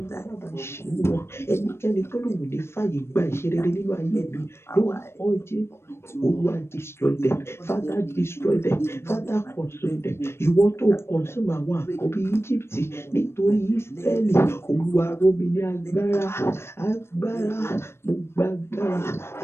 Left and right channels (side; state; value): right; late; 0.12 ms